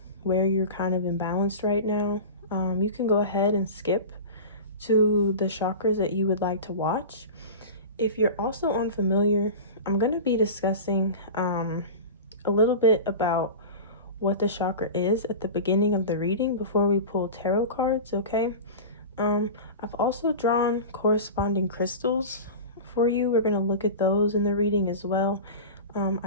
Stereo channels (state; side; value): inverted; both; correlation -0.31